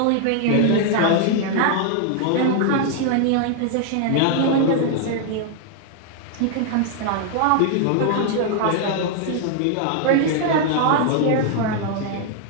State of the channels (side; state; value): both; different; correlation 0.00